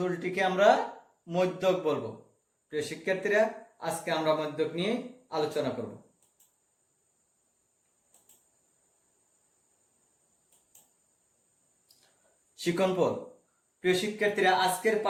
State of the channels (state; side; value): identical; both; correlation 1.00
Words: আমরা মধ্যক বলবো। প্রিয় শিক্ষার্থীরা, আজকে আমরা মধ্যক নিয়ে আলোচনা করব। শিক্ষণপদ। প্রিয় শিক্ষার্থীরা, আজকের